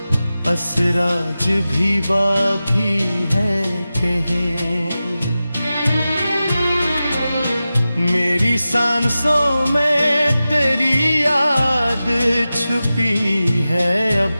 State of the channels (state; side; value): inverted; both; correlation -0.94